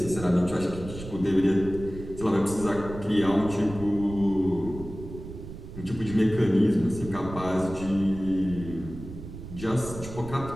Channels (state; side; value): noise; right; rumble, 12 dB below the sound